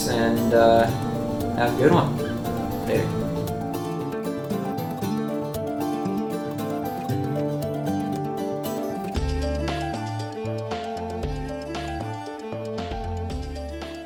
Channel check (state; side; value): identical; both; correlation 1.00